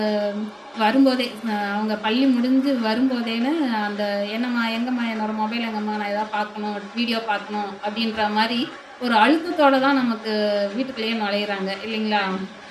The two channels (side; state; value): both; identical; correlation 1.00